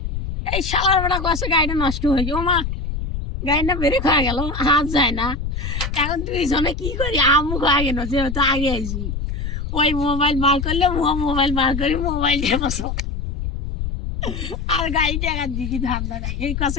এই সালার বেড়া কষে গাড়িটা নষ্ট হয়েছে। ও মা, গাড়িটা বেড়ে খাওয়া গেল, হাত যায় না। এখন দুইজনে কি করি, আমু খাওয়া গেল, যেহেতু আগে আইসি। ওই মোবাইল বার করলে মোবাইল বার করি, মোবাইল দিয়ে বসো আর গাড়ি টাকার দিকে ধান্দা নাই। এই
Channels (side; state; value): left; noise; rumble, 4 dB below the sound